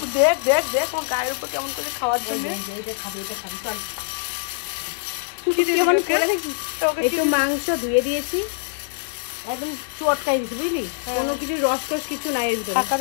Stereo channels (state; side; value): silent; right; 63 dB below the other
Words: দেখ দেখ দেখ আমার গায়ের উপর কেমন করে খাওয়ার জন্য। এটা খাবি চল। কি দিয়ে দিবি ওকে? ওকে কি একটু মাংস ধুয়ে দিয়েছি, একদম চটকাই দিয়েছি বুঝলি, কোনো কিছু রসকস কিছু নাই এর ভিতরে।